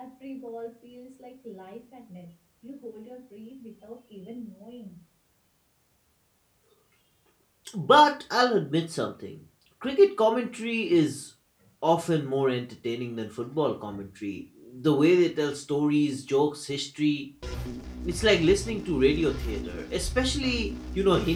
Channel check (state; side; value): identical; both; correlation 1.00